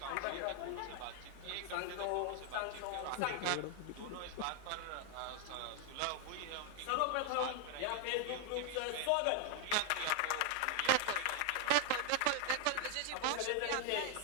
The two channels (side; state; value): both; different; correlation 0.00